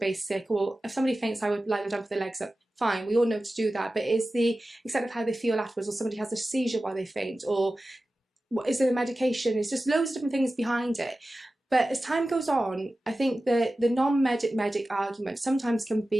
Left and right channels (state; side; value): normal; both; correlation 0.95